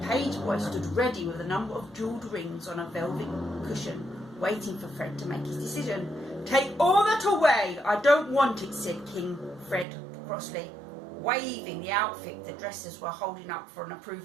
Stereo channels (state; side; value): drops out; left; at 9.9 s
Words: page boy stood ready with a number of jewelled rings on a velvet cushion, waiting for Fred to make his decision. "Take all that away, I don't want it," said King Fred crossly, waving the outfit the dressers were holding up for an